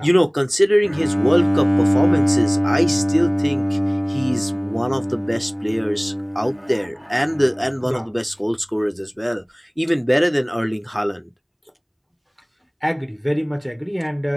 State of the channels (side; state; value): both; identical; correlation 1.00